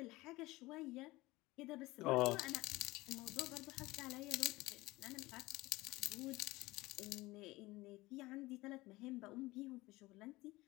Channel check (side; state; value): right; quieter; 20.1 dB